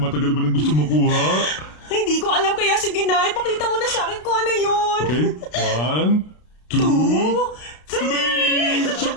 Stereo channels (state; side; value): late; right; 32 ms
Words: ba nang gusto makuha? Hindi ko alam kaya sige na. Ipakita mo na sa akin kung ano yun. Okay? 1, 2, 2, 3.